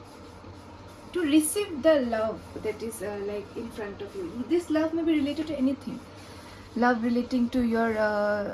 to receive the love that is like in front of you. This love may be related to anything, love relating to your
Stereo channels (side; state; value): both; identical; correlation 1.00